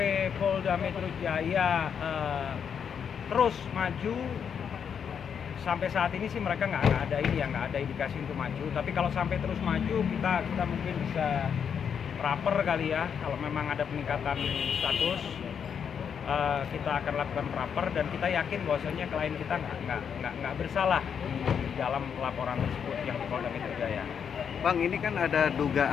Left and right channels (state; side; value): quieter; right; 7.4 dB